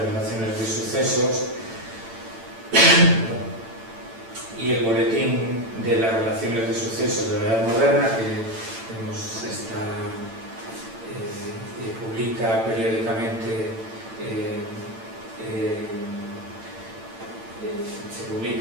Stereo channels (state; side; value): late; left; 8.8 ms